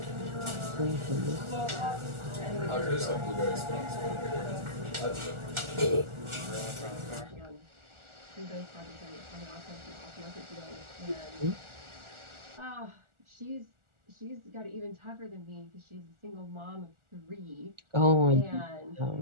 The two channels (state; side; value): late; left; 1.4 ms